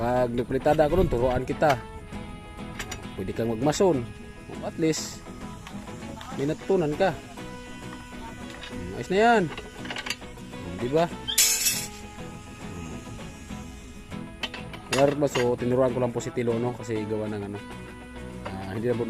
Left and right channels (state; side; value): identical; both; correlation 1.00